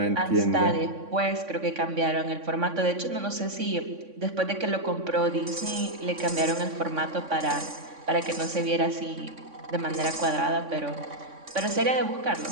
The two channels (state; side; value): late; left; 3.6 ms